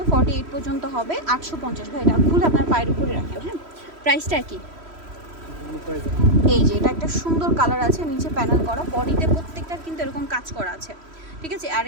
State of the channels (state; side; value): late; left; 3.1 ms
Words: 48 পর্যন্ত হবে। 850 ভাই। এটা খুলে আপনার পায়ের উপরে রাখেন। হ্যাঁ, প্রাইসটা কি? এই যে এটা একটা সুন্দর কালার আছে, নিচে প্যানেল করা, বডিতে প্রত্যেকটার কিন্তু এরকম কাজ করা আছে, ঠিক আছে? আর